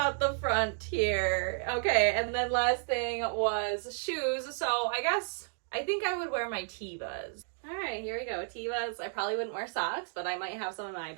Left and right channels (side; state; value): left; silent; 56 dB below the other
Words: the front here. Okay, and then last thing was shoes. So I think I would wear my Tevas. All right, here we go. Tevas. I probably wouldn't wear socks, but I might have some in my